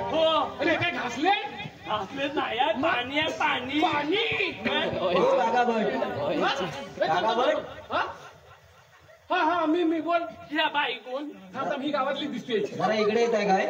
हो. अरे काय घासले? घासले नाही पाणी आहे पाणी पाणी. हा मी बोल. ह्या बाई कोण? आता मी गावातली दिसते. जरा इकडे येत आहे काय?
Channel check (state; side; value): identical; both; correlation 1.00